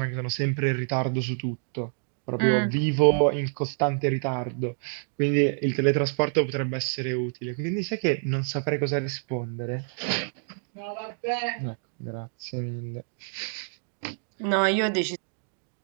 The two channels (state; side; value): silent; left; digital silence